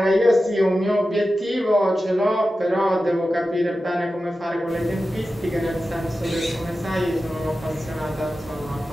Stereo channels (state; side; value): normal; both; correlation 0.93